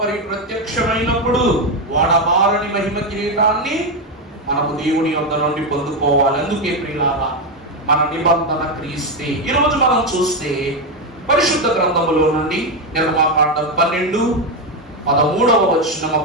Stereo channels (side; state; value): both; normal; correlation 0.08